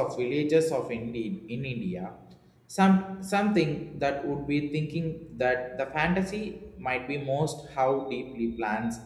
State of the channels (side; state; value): both; identical; correlation 1.00